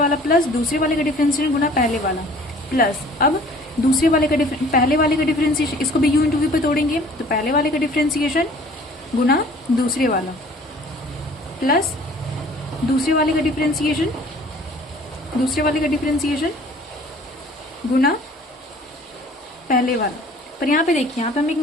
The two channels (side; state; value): both; normal; correlation 0.51